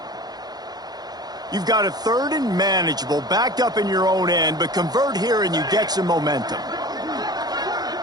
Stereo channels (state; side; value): late; left; 0.19 ms